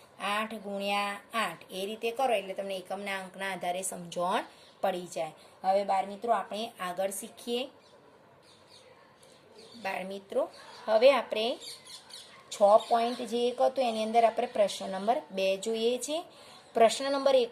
8 ગુણ્યા 8, એ રીતે કરો એટલે તમને એકમના અંકના આધારે સમજણ પડી જાય. હવે બાળ મિત્રો આપણે આગળ શીખીએ. બાળ મિત્રો હવે આપણે 6 પોઈન્ટ જે એક હતું એની અંદર આપણે પ્રશ્ન નંબર 2 જોઈએ છે. પ્રશ્ન નંબર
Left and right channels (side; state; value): both; identical; correlation 1.00